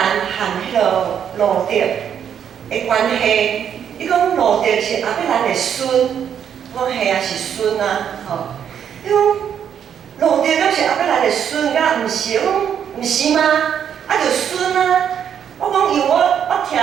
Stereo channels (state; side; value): quieter; left; 8.6 dB